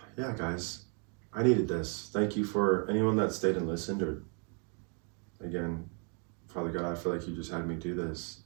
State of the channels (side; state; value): left; quieter; 38.9 dB